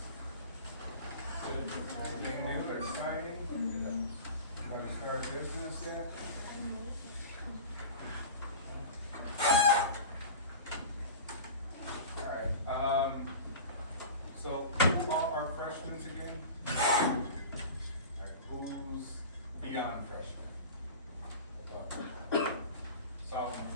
Good. Anything new or exciting? Anybody start business yet? All right. So who are our freshmen again? All right, who's beyond freshmen? Sophomore,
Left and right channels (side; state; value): both; inverted; correlation -0.33